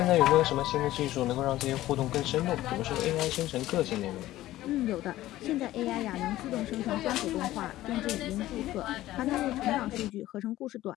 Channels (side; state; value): right; quieter; 15.3 dB